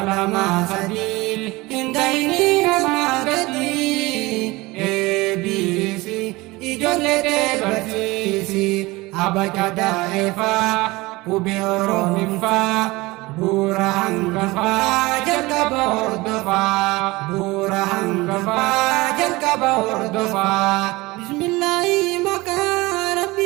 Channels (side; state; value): left; quieter; 21.7 dB